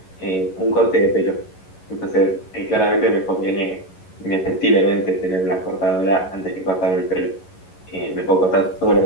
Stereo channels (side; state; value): right; late; 11 ms